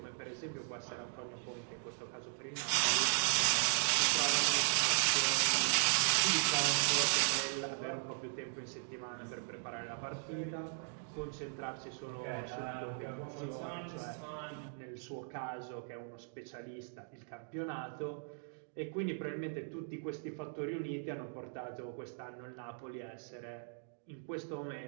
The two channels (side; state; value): left; silent; digital silence